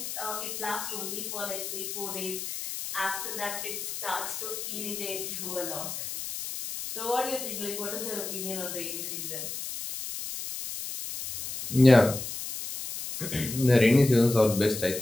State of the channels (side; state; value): left; noise; hiss, 6 dB below the sound